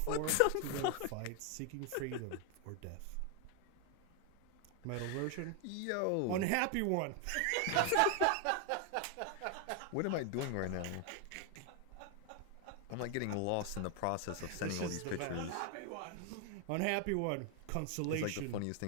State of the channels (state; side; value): different; both; correlation 0.01